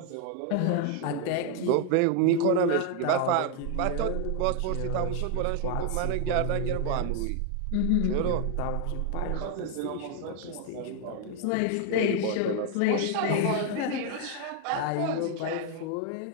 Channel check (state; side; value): different; both; correlation 0.01